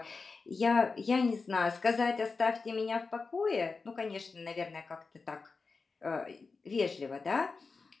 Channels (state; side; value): quieter; right; 4.4 dB